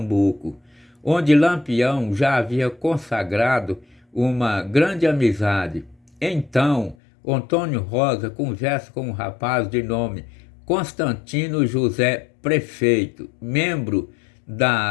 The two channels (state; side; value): drops out; right; at 7.0 s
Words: onde Lampião já havia consagrado uma grande amizade. Então, Antônio Rosa conversa com um rapaz de nome Constantino José Prefeito, membro